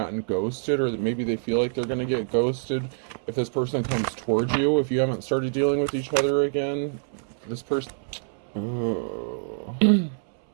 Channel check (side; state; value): left; silent; 61 dB below the other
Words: ghosted, or maybe they feel like they're going to get ghosted if this person comes towards you. If you haven't started dealing with each other again, this person... Oh.